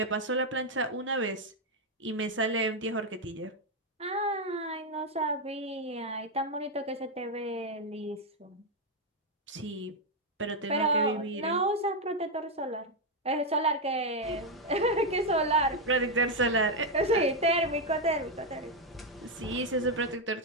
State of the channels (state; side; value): normal; both; correlation 0.03